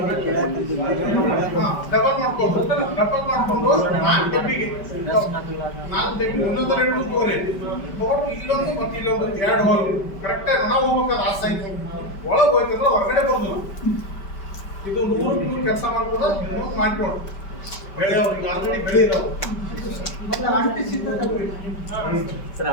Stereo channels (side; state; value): right; late; 5.1 ms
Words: ಮಾಡ್ಕೊಂಡು 4 ಡಬ್ಬಿಗೆ 4 ಡಬ್ಬಿ ಒಂದೊಂದು 2 ತಗೋರಿ ತಗೊಂಡು ಇಲ್ಲೊಂದು ಮತ್ತೆ ಇಲ್ಲೊಂದು 2 ಹೋಗಿ ಕರೆಕ್ಟಾಗಿ ನಾವು ಹೋಗ್ಬೇಕಾದ್ರೆ ಆ ಸೈಜ್ ಒಳಗೆ ಹೋಯ್ತಂದ್ರೆ ಹೊರಗಡೆ ಬರೋದಿಲ್ಲ. ಇದು 100 ಕೆಲಸ ಮಾಡ್ಬೋದ ಇನ್ನೊಂದು ಮಾಡ್ಕೊಡು ಬೆಳೆಯೋರಿಗೆ ಆಲ್ರೆಡಿ ಬೆಳೆಯಿರೋದು ಮತ್ತೆ ಅಂಟಿಸಿದ್ರೆ ಸರ್